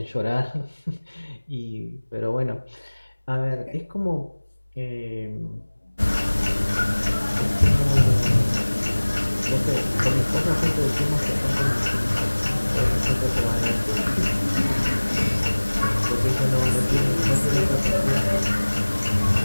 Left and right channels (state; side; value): inverted; both; correlation -1.00